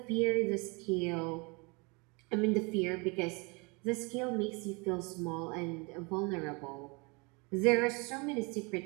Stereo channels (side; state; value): left; quieter; 29.4 dB